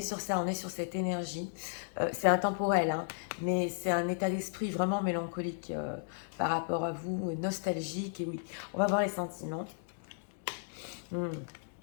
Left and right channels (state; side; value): silent; right; digital silence